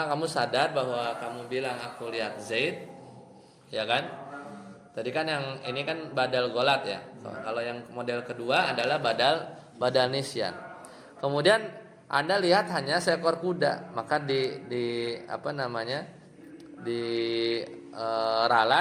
kamu sadar bahwa kamu bilang aku lihat Zaid, ya kan? Tadi kan yang ini kan badal ghalat ya. Kalau yang model kedua adalah badal nisyan. Kemudian Anda lihat hanya seekor kuda, maka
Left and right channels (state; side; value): identical; both; correlation 1.00